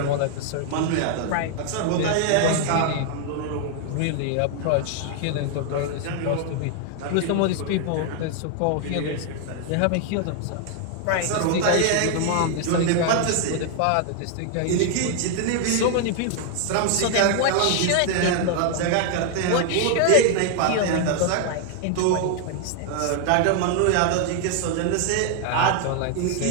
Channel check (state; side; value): different; both; correlation 0.00